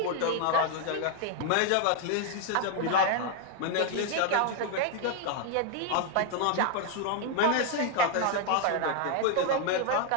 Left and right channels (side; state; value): both; different; correlation 0.00